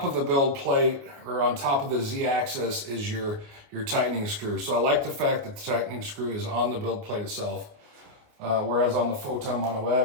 of the build plate, or on top of the Z-axis, is your tightening screw. So I like the fact that the tightening screw is on the build plate itself, whereas on the Photon Mono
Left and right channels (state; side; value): late; left; 28 ms